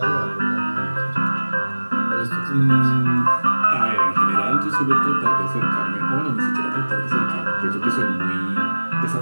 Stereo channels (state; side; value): inverted; both; correlation -1.00